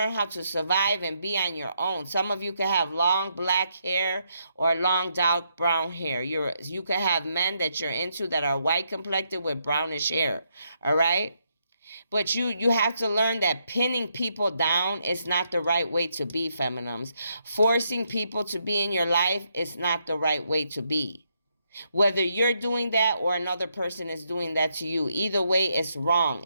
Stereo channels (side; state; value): both; inverted; correlation -0.77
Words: how to survive and be on your own. Some of you can have long black hair or long dark brown hair. You can have men that you're into that are white complected with brownish hair. All right? But you have to learn that pinning people down is not the right way to be, feminines. Forcing people to be in your life is not the right way to be. Whether you're doing that or another person is doing that to you, either way, it's wrong.